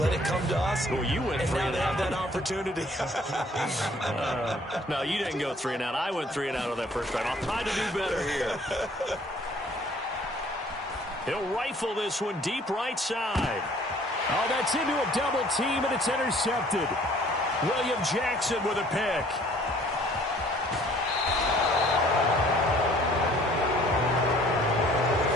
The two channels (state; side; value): normal; both; correlation 0.56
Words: it come to us. Well, you went and 3 now and they out. have that opportunity. No, you didn't go 3 and out. I went 3 and out on that first drive. I'll try to do better here. He'll rifle this one deep right side. Oh, that's into a double team, and it's intercepted. William Jackson with a pick.